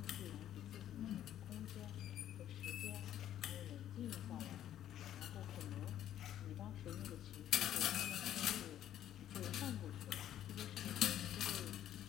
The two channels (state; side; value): quieter; right; 11.5 dB